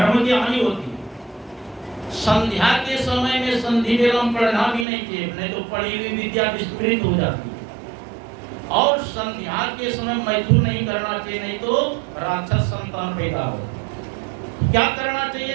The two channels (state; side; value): drops out; left; at 4.9 s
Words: की हानि होती है। संध्या के समय में संधि वेलम पढ़ना भी नहीं चाहिए, नहीं तो पढ़ी हुई विद्या विस्मृत हो जाती है। और संध्या के समय मैथुन नहीं करना चाहिए, नहीं तो राक्षस संतान पैदा हो। क्या करना